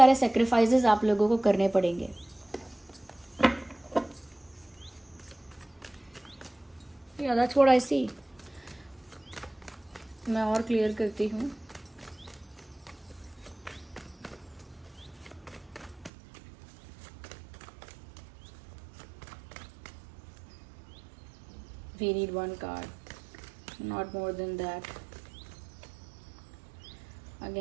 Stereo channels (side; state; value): left; drops out; at 16.1 s